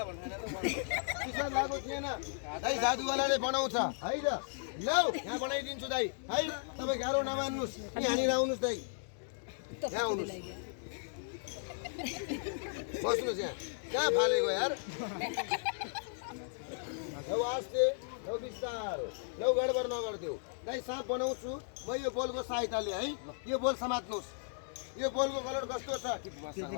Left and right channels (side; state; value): right; silent; digital silence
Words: भनेर चिसो लागेको थिएन है जादुवालाले बनाउँछ है त लौ यहाँ बनाइदिन्छु दाइ है तपाईँ गाह्रो नमान्नुहोस् यहाँनिर आउनुहोस् दाइ यहाँ आउनुहोस् बस्नुहोस् यहाँ कहाँ फालेको यार लौ आस्ते लौ बिस्तारो लौ गडबड नगरिदेऊ दाइ साँप बनाउँछु म यो बोलको सहायताले है यो बोल समात्नुहोस् यो बोलको कलर कस्तो छ